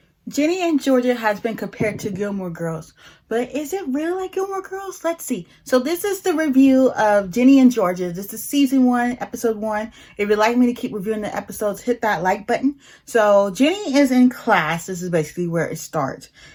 Ginny and Georgia has been compared to Gilmore Girls, but is it real like Gilmore Girls? Let's see. So this is the review of Ginny and Georgia. This is season 1, episode 1. If you'd like me to keep reviewing the episodes, hit that like button. So Ginny is in class. This is basically where it starts.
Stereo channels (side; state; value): both; identical; correlation 1.00